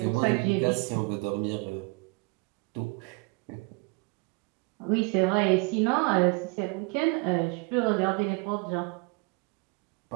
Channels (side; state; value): left; quieter; 29.7 dB